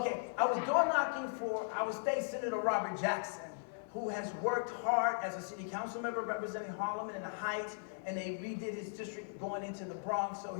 I was door knocking for our state senator Robert Jackson, who has worked hard as a city council member representing Harlem and the Heights, and they redid his district going into the Bronx. So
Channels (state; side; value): silent; right; 53 dB below the other